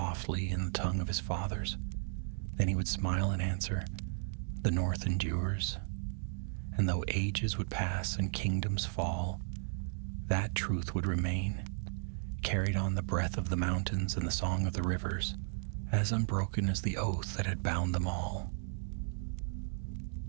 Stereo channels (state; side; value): silent; left; 54 dB below the other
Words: in the tongue of his fathers. Then he would smile and answer, "The North endures." And though ages would pass and kingdoms fall, that truth would remain, carried on the breath of the mountains and the song of the rivers, as unbroken as the oath that had bound them all.